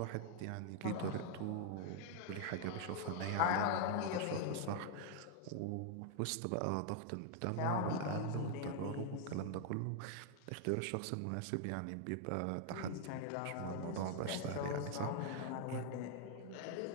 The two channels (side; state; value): both; different; correlation 0.00